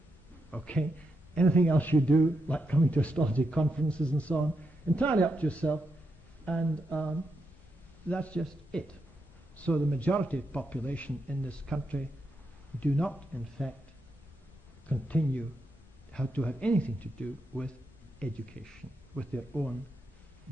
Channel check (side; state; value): both; normal; correlation 0.83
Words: Okay? Anything else you do, like coming to astrology conferences and so on, entirely up to yourself, and that's just it. So the majority of the population in this country do not, in fact, continue to have anything to do with education, with their own